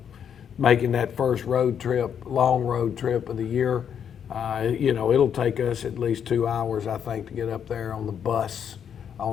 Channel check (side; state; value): right; quieter; 8.2 dB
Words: Making that first road trip, long road trip of the year, you know, it'll take us at least 2 hours, I think, to get up there on the bus